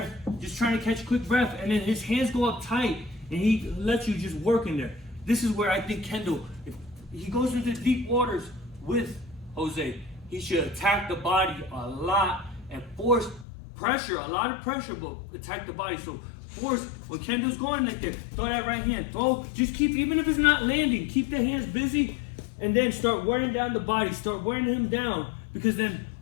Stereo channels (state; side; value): drops out; right; at 13.5 s